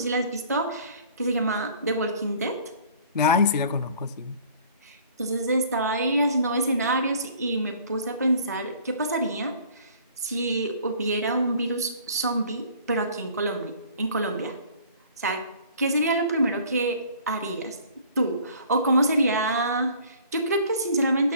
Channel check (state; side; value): inverted; both; correlation -0.52